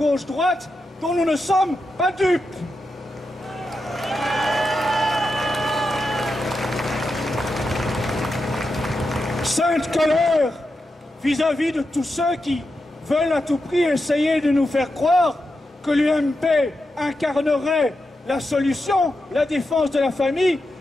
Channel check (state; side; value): normal; both; correlation 0.88